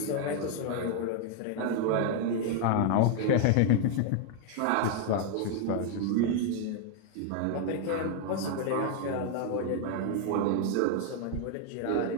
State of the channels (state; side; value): different; both; correlation 0.00